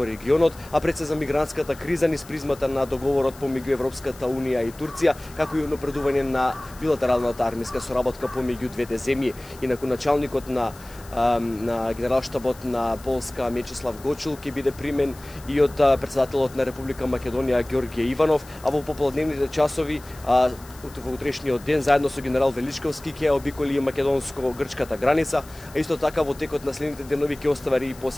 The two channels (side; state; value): left; noise; hiss, 21 dB below the sound